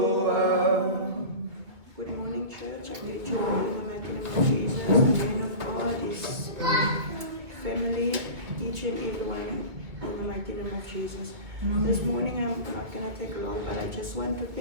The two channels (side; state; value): left; late; 2.4 ms